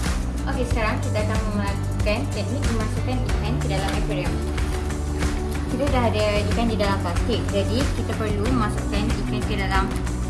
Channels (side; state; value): both; identical; correlation 1.00